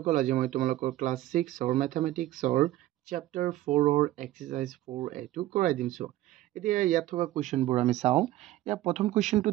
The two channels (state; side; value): quieter; left; 15.3 dB